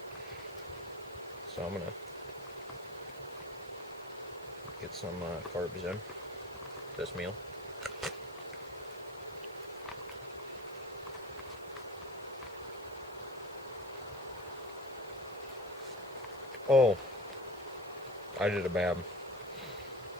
So I'm gonna get some carbs in this meal. Oh, I did a bad.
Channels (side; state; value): both; normal; correlation 0.39